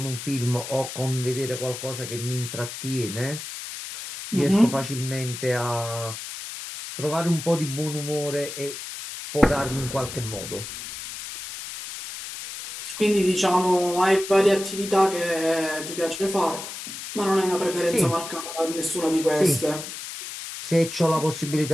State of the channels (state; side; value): noise; left; hiss, 9 dB below the sound